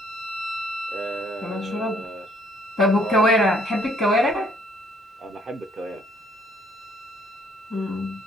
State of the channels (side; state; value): both; normal; correlation 0.64